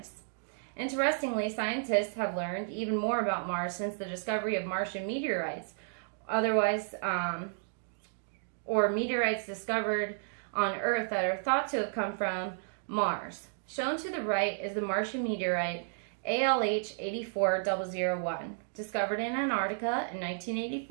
Interestingly, scientists have learned even more about Mars since the discovery of Martian meteorites, or meteorites discovered on Earth that are thought to have come from Mars. Shown to the right is the Martian meteorite ALH 84001, discovered in Antarctica in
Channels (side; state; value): left; silent; digital silence